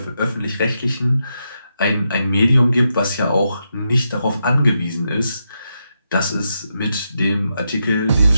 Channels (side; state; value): both; inverted; correlation -0.84